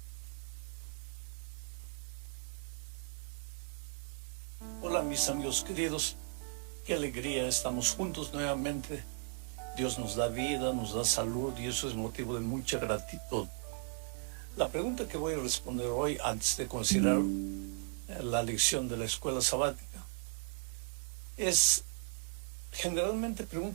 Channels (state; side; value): silent; left; 53 dB below the other